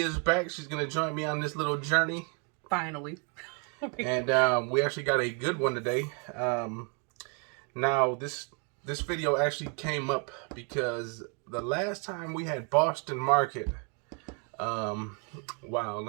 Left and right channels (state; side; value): quieter; left; 37.0 dB